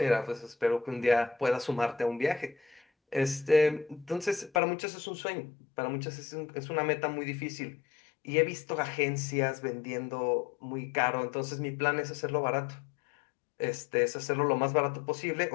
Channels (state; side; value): drops out; right; at 4.6 s